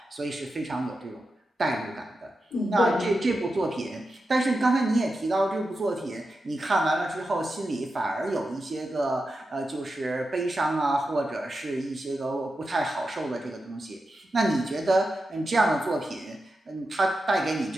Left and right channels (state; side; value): normal; both; correlation 0.90